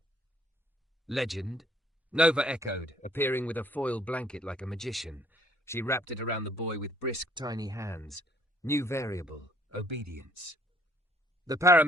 "Legend?" Nova echoed, appearing with a foil blanket like a magician. She wrapped it around the boy with brisk, tiny hands. New variable, obedience. The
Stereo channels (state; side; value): normal; both; correlation 0.61